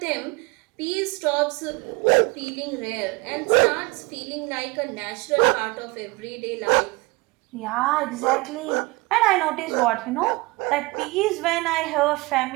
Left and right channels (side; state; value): left; quieter; 24.2 dB